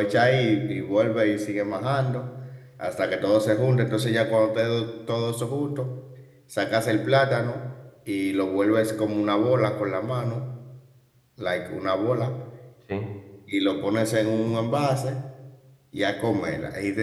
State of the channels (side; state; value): both; identical; correlation 1.00